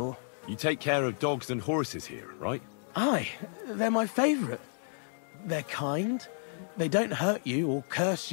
You take care of dogs and horses here, right? Aye, they're my favourite. They're kind. They don't hurt you or curse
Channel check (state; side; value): silent; right; digital silence